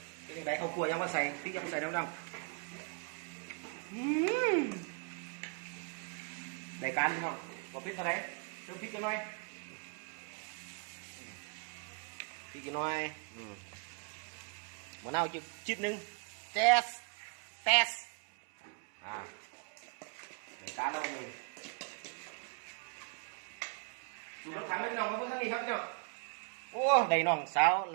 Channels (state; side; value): quieter; left; 37.1 dB